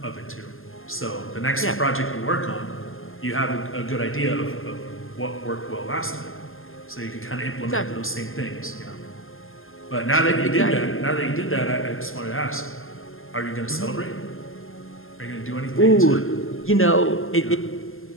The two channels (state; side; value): late; right; 0.60 ms